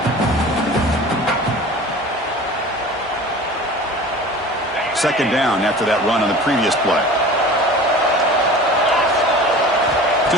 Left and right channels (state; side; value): normal; both; correlation 0.39